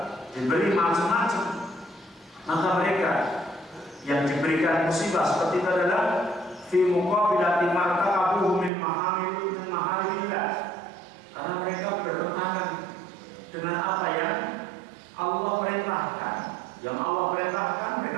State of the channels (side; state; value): left; drops out; at 8.7 s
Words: diberi macam-macam. Maka mereka yang diberikan musibah seperti itu adalah fi muqabilati martaqabuhu min maharimillah, karena mereka bertentangan dengan apa yang Allah perintahkan. Yang Allah perintahkan